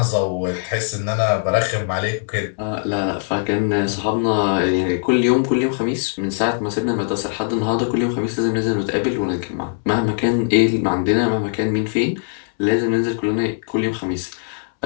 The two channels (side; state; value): right; silent; 65 dB below the other